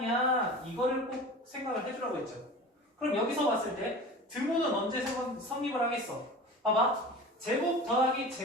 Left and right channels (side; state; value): both; normal; correlation 0.36